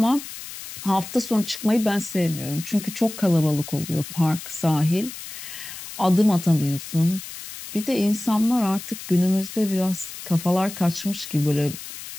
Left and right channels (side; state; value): left; noise; hiss, 12 dB below the sound